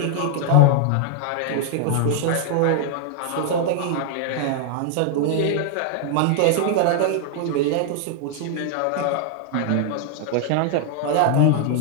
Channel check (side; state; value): both; different; correlation 0.00